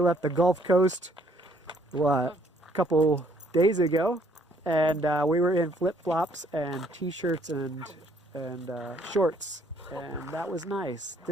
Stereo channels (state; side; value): normal; both; correlation 0.65